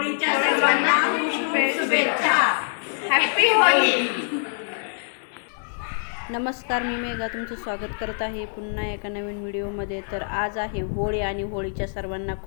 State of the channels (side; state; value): right; silent; digital silence